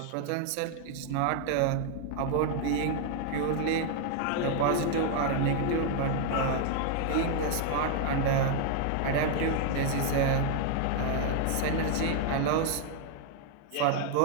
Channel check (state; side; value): different; both; correlation 0.00